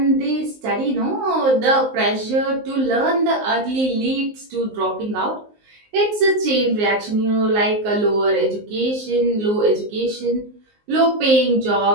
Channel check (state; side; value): late; left; 19 ms